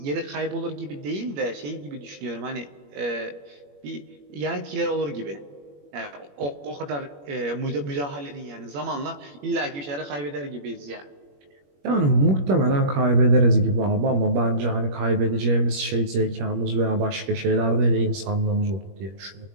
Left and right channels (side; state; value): left; late; 21 ms